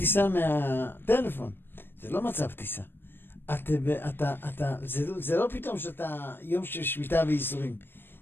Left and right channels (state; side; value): late; right; 0.099 ms